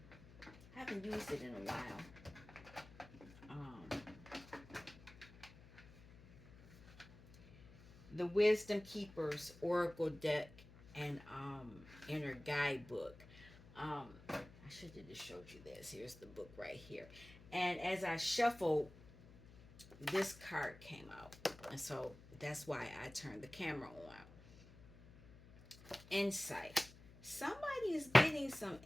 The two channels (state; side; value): noise; left; hum, 20 dB below the sound